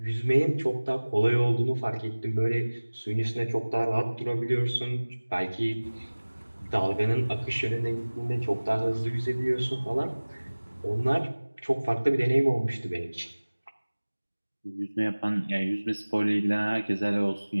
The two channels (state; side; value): inverted; both; correlation -1.00